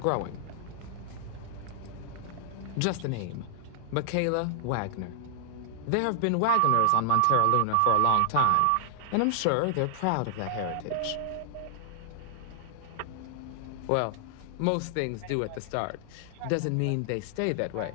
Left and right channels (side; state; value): both; different; correlation -0.01